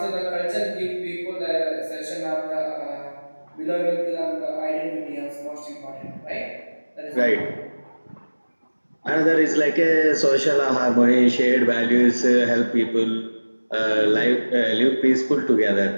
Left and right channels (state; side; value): inverted; both; correlation -1.00